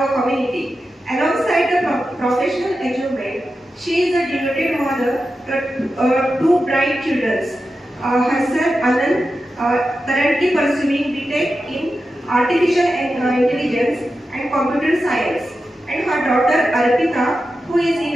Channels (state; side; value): normal; both; correlation 0.91